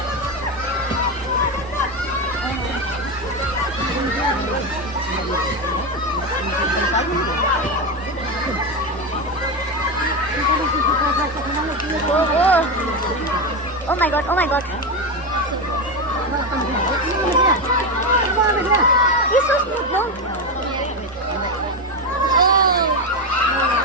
Oh my God, oh my God. He's so smooth, no?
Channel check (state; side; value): normal; both; correlation 0.13